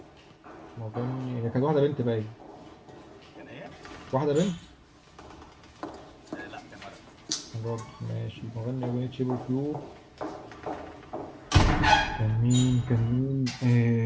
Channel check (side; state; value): both; identical; correlation 1.00